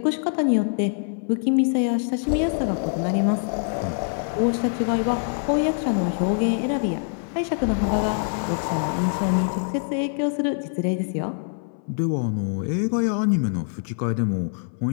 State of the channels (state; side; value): silent; right; 59 dB below the other